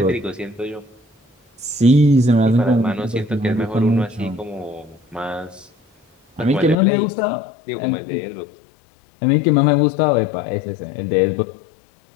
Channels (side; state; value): right; drops out; at 6.8 s